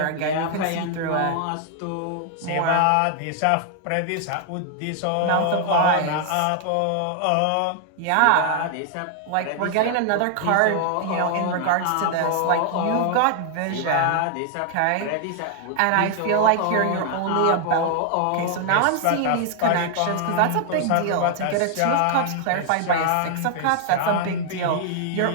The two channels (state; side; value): different; both; correlation 0.00